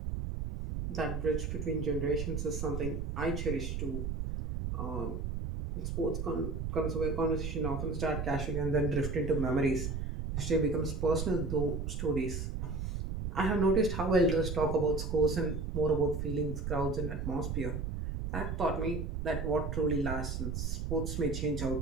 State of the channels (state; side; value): noise; right; rumble, 3 dB below the sound